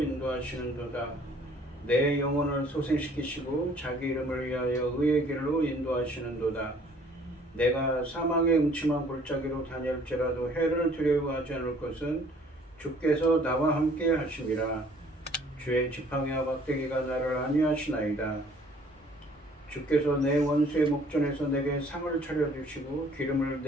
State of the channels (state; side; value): normal; both; correlation 0.57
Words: 내 영혼을 소생시키시고 자기 이름을 위하여 의의 길로 인도하시는도다. 내가 사망의 음침한 골짜기로 다닐지라도 해를 두려워하지 않을 것은 주께서 나와 함께 하심이라. 주의 지팡이와 막대기가 나를 안위하시나이다. 주께서 내 원수의 목전에서 내게 상을 차려주시고 기름을